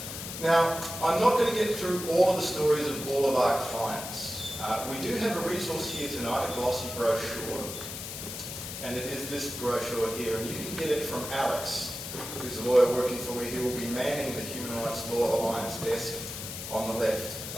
Now, I'm not going to get through all of the stories of all of our clients. We do have a resource here tonight, a glossy brochure, and it is this brochure here, and you can get it from Alex, who's a lawyer working for me, who will be manning the Human Rights Law Alliance desk on the left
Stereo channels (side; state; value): left; noise; hiss, 8 dB below the sound